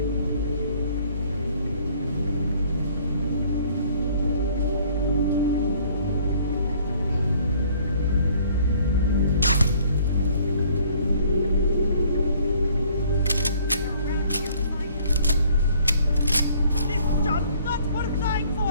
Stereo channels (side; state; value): both; inverted; correlation -0.58